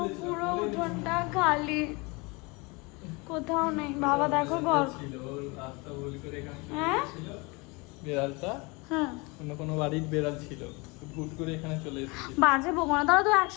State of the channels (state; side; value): quieter; right; 27.4 dB